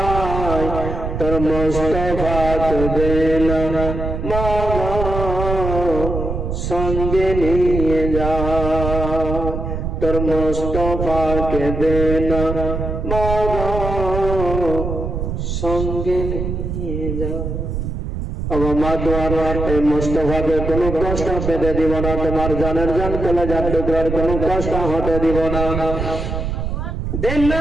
মোস্তফাকে দে না মাগো সঙ্গে নিয়ে যা, তোর মোস্তফাকে দে না মাগো সঙ্গে নিয়ে যা। এই মুস্তফাকে কোনো কষ্ট পেতে দিব না, তোমার জানের জান কলেজার টুকরার কোনো কষ্ট হতে দিব না। দিন না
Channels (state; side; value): noise; right; rumble, 4 dB below the sound